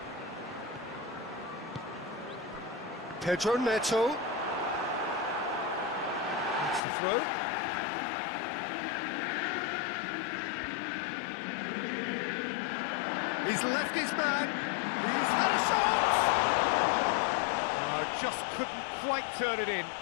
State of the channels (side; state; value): right; drops out; at 6.8 s